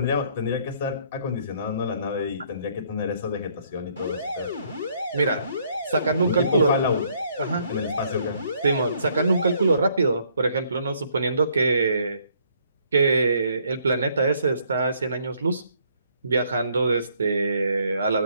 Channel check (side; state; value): both; inverted; correlation -0.67